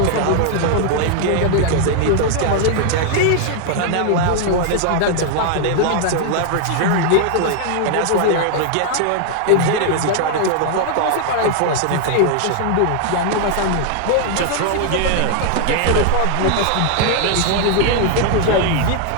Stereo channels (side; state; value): both; different; correlation 0.00